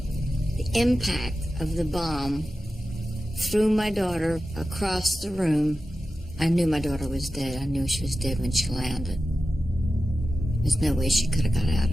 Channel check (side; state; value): both; normal; correlation 0.93